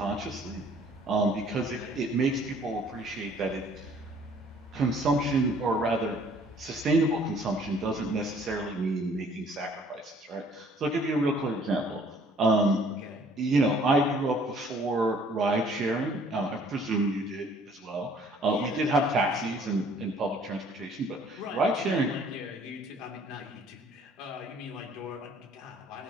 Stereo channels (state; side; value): normal; both; correlation 0.58